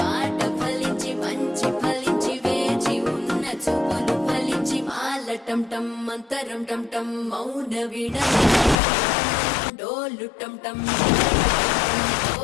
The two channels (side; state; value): right; drops out; at 8.8 s